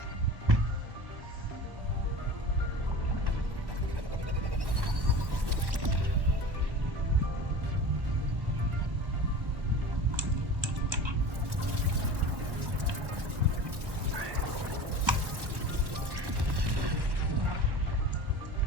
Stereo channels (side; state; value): left; late; 1.1 ms